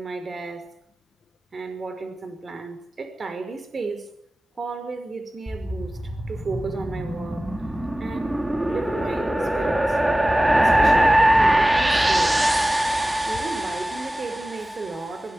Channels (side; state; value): both; normal; correlation 0.96